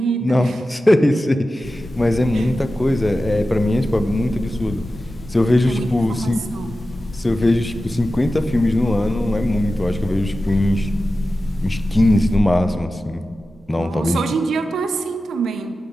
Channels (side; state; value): both; normal; correlation 0.93